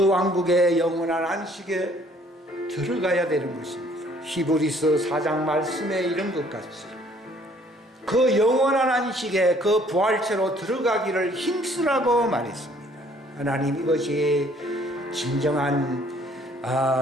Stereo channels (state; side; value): normal; both; correlation 0.60